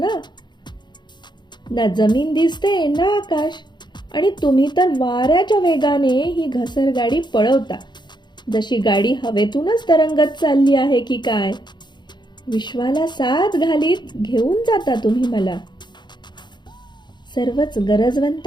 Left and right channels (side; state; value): right; late; 0.21 ms